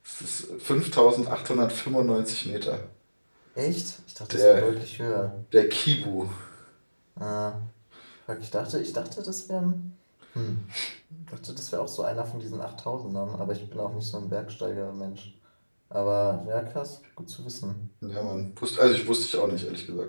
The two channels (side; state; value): both; inverted; correlation -1.00